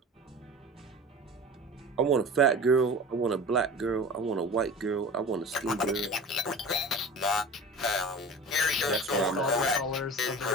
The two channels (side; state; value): both; normal; correlation 0.36